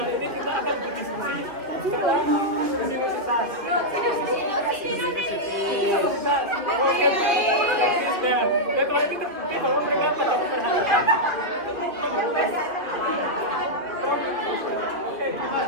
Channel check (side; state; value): left; late; 2.8 ms